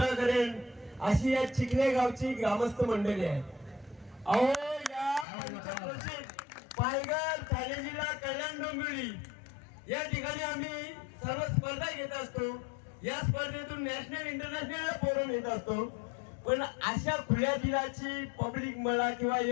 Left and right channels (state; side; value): drops out; right; at 5.2 s